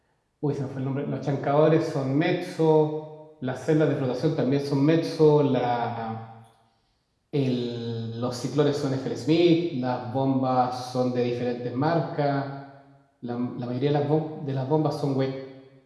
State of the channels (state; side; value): identical; both; correlation 1.00